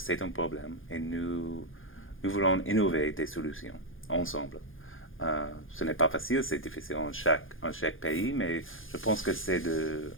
un problème et nous voulons innover des solutions ensemble. Ce n'est pas facile, c'est difficile en chaque pays, mais je pense que c'est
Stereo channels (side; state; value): right; late; 0.59 ms